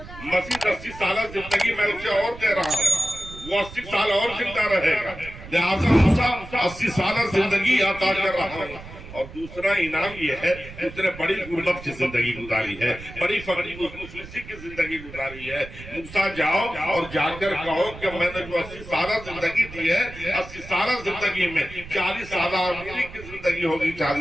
مزید 80 سالہ زندگی میں اسے اور دے رہا ہوں، وہ 80 سال اور زندہ رہے گا، لہٰذا موسیٰ 80 سالہ زندگی عطا کر رہا ہوں۔ اور دوسرا انعام یہ ہے کہ اس نے بڑی غربت کی زندگی گزاری ہے، بڑی فقری مفلسی کی زندگی گزاری ہے۔ موسیٰ جاؤ اور جا کر کہو کہ میں نے جو 80 سالہ زندگی دی ہے، 80 سالہ زندگی میں 40 سالہ امیری کی زندگی ہوگی،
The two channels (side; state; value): right; noise; rumble, 15 dB below the sound